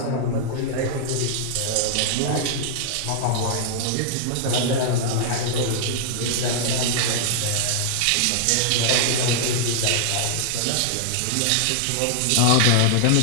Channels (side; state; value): both; different; correlation -0.01